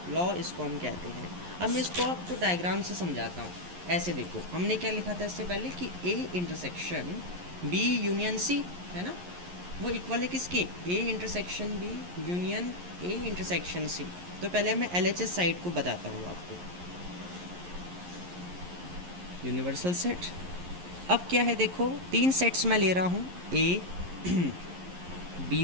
लॉ इसको हम कहते हैं। अब मैं इसको आपको डायग्राम से समझाता हूँ। ऐसे देखो, हमने क्या लिखा था इससे पहले कि A intersection B union C है ना, वो इक्वल है किसके, A intersection B union A intersection C. तो पहले मैं LHS साइड को बताता हूँ आपको, यूनिवर्सल सेट। अब क्या है देखो, 3 सेट्स मैं ले रहा हूँ, ए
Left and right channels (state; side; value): late; left; 11 ms